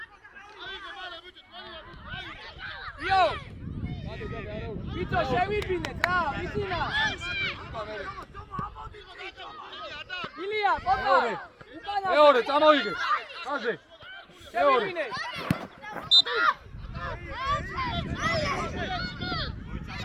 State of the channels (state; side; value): identical; both; correlation 1.00